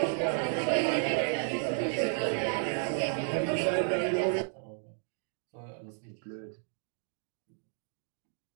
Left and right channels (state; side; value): silent; left; 56 dB below the other